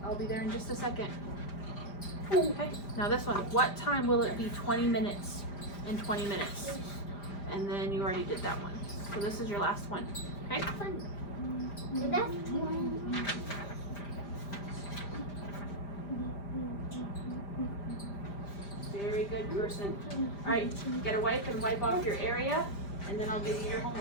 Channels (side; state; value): right; late; 5.0 ms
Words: I'll be there in just a second. Okay, now this one. What time will it be 20 minutes and 20 minutes? And then you already did that one. So this is your last one. Okay? So that's 20. Very good person. Alright, get a wipe and wipe off your area. And then I'll give you your